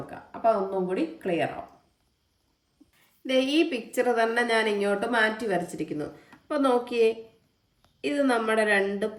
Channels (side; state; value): both; identical; correlation 1.00